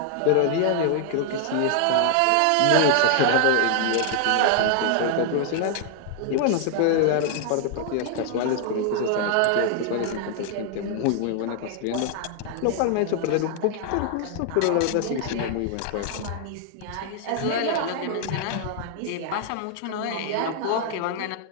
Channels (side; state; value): both; different; correlation 0.00